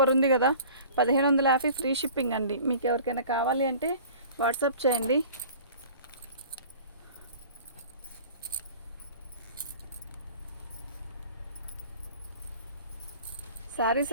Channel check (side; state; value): both; inverted; correlation -0.44